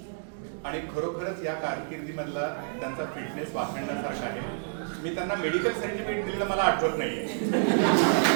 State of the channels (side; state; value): left; silent; digital silence